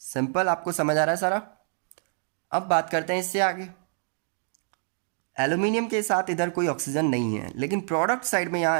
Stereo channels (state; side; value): silent; left; digital silence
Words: आपको समझ आ रहा है सारा? अब बात करते हैं इससे आगे। एल्यूमिनियम के साथ इधर कोई ऑक्सीजन नहीं है, लेकिन प्रोडक्ट साइड में